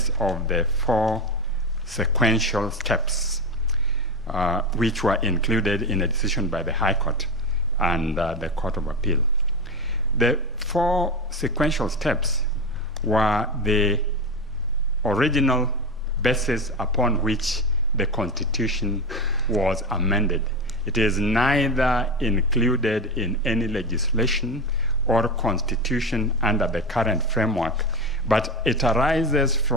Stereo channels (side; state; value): both; normal; correlation 0.19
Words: of the 4 sequential steps which were included in a decision by the High Court and the Court of Appeal. The 4 sequential steps were the original basis upon which the Constitution was amended. It is neither included in any legislation or constitution under the current framework, but it arises